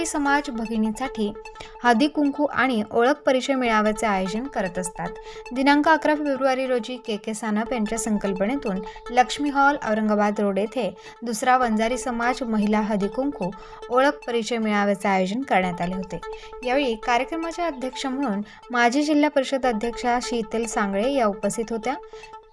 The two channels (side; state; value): both; identical; correlation 1.00